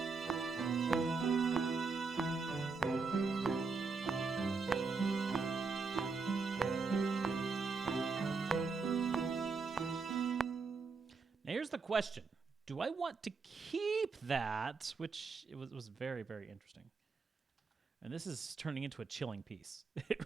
Here's the question. Do I want to keep that? Which it was very, very interesting. And this is turning into a chilling piece. It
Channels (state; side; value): quieter; left; 4.5 dB